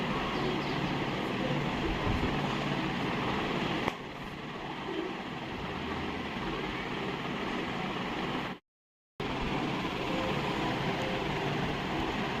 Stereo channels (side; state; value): both; identical; correlation 1.00